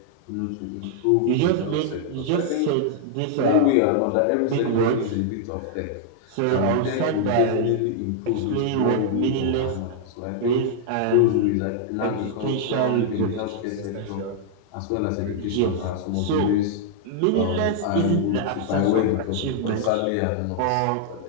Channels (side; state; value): both; different; correlation -0.01